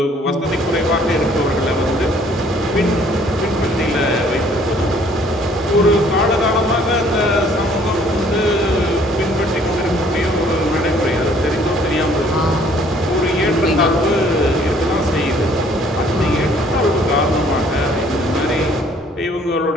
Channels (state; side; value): normal; both; correlation 0.59